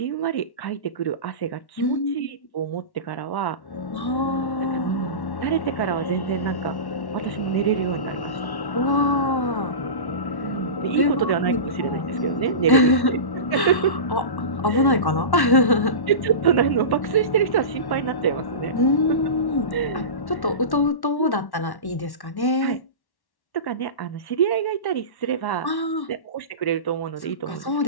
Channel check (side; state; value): right; late; 1.1 ms